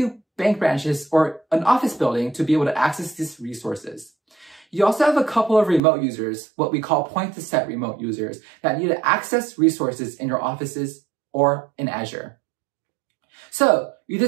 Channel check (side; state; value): left; drops out; at 5.8 s